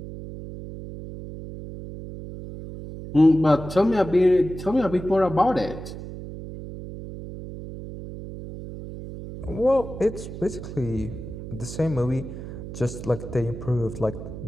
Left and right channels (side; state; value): right; noise; hum, 10 dB below the sound